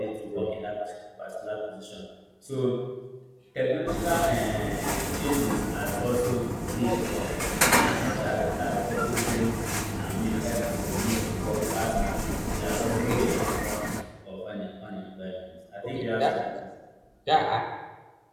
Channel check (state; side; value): identical; both; correlation 1.00